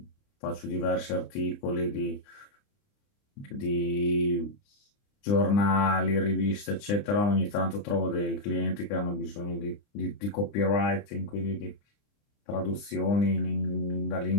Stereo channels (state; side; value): late; right; 29 ms